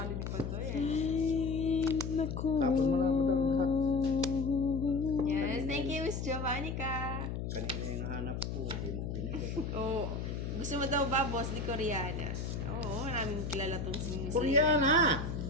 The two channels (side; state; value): left; noise; hum, 4 dB below the sound